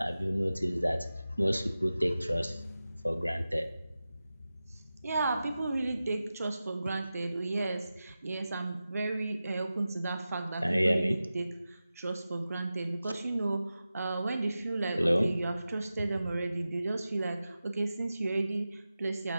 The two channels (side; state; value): both; inverted; correlation -0.94